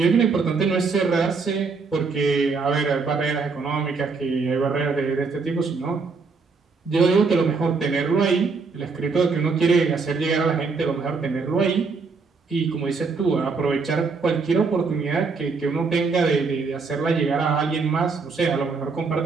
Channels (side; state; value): left; quieter; 4.6 dB